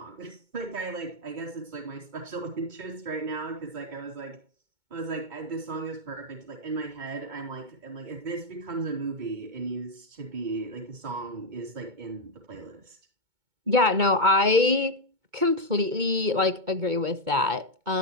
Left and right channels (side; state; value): left; late; 2.2 ms